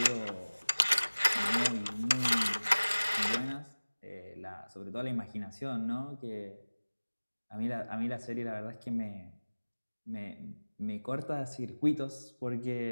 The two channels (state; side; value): inverted; both; correlation -1.00